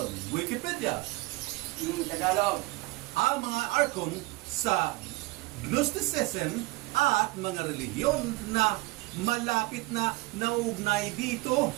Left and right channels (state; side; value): quieter; left; 22.0 dB